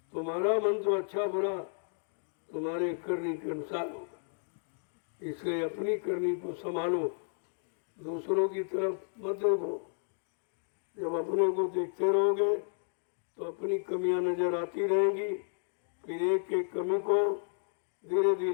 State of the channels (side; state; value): right; silent; digital silence